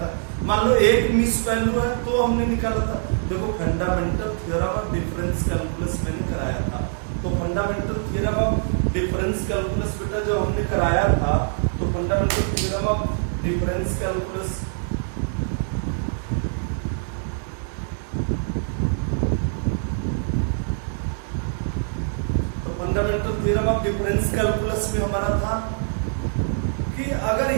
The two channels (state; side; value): silent; left; digital silence